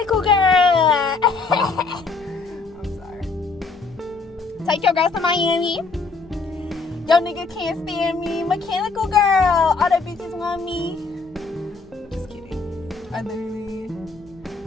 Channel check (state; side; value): quieter; right; 4.2 dB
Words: girl. I'm sorry. Take your girls to Miami. Yo nigga can't stand me. Mechanical girl. All the bitches want me. Just kidding. I literally